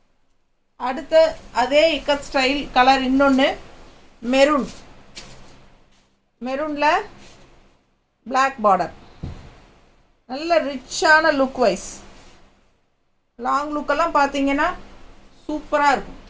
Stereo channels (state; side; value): identical; both; correlation 1.00